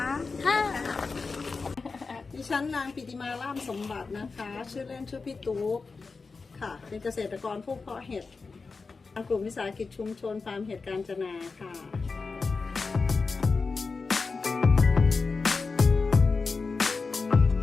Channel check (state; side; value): quieter; right; 4.4 dB